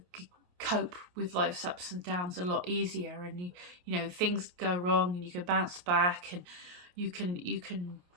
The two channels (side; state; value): left; late; 28 ms